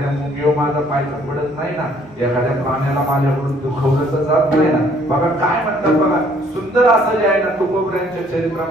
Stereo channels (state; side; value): normal; both; correlation 0.62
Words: मुंगीवर माझा पाय पडत नाही ना, एखाद्या प्राण्याला माझ्याकडून दुखवलं तर जात नाही ना. बघा काय म्हणतात बघा, सुंदर असं जे आहे ना तुकोबऱ्यांच्या